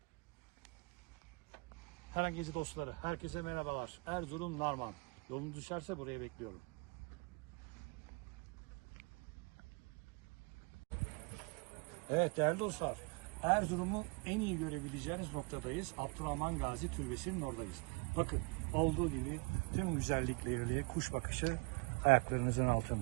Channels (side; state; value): left; quieter; 30.1 dB